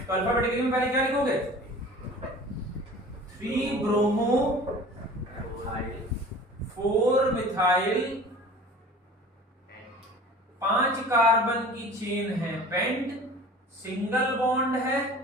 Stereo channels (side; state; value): both; normal; correlation 0.42